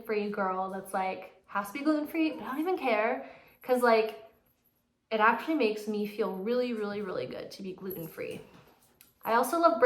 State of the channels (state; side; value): identical; both; correlation 1.00